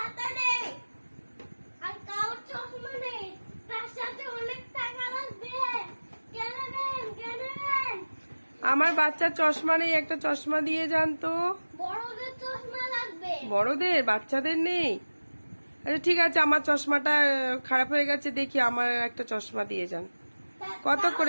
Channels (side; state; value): both; inverted; correlation -1.00